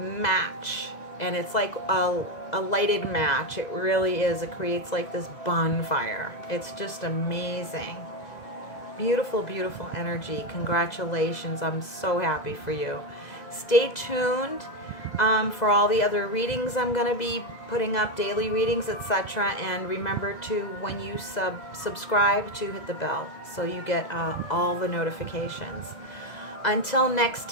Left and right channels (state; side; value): late; right; 2.0 ms